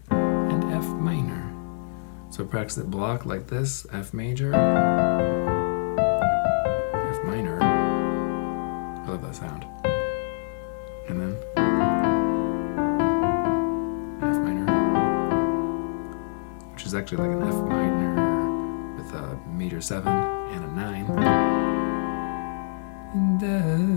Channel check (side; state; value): right; silent; 59 dB below the other